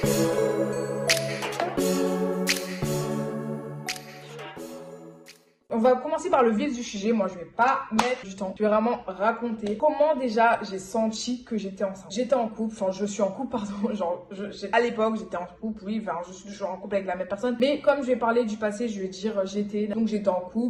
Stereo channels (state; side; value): identical; both; correlation 1.00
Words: On va commencer par le vif du sujet. Moi, je vais pas mettre du temps. Je vais vraiment raconter comment déjà j'ai senti que j'étais enceinte. J'étais en couple, enfin je suis en couple, pardon. Genre, à l'époque, j'étais en couple, oui, enfin je suis toujours en couple avec la même personne. Mais comme je vais parler du passé, je vais dire j'étais. Donc j'étais en